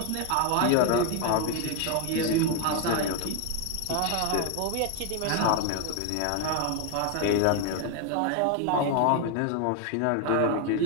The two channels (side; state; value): both; different; correlation 0.01